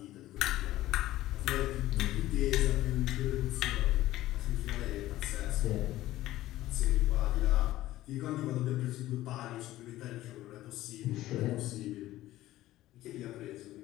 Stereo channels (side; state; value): right; quieter; 15.4 dB